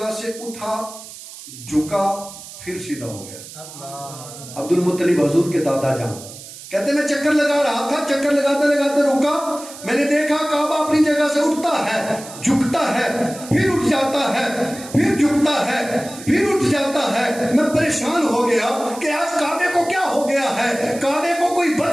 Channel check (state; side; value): noise; right; hiss, 15 dB below the sound